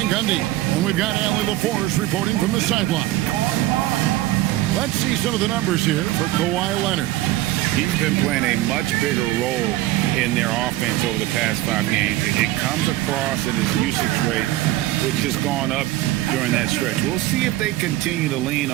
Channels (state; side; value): quieter; left; 15.8 dB